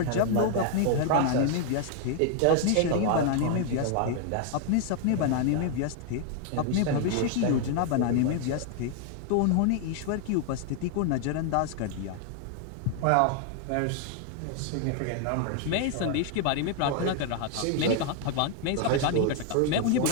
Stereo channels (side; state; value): both; different; correlation 0.00